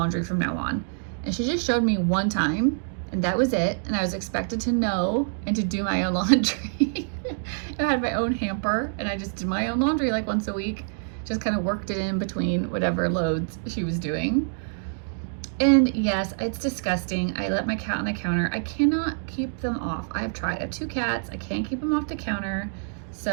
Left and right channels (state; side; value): silent; left; digital silence